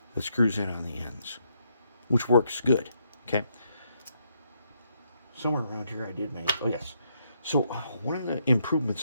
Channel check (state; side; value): inverted; both; correlation -0.76